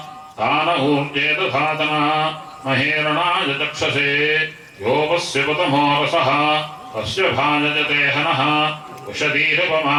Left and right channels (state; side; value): identical; both; correlation 1.00